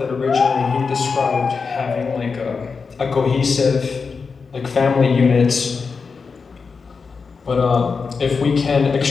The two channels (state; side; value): quieter; right; 5.1 dB